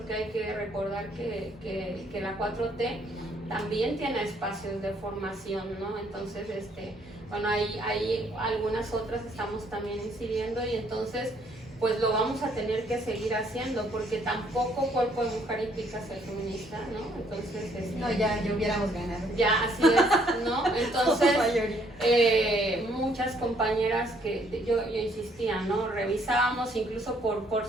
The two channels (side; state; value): both; normal; correlation 0.66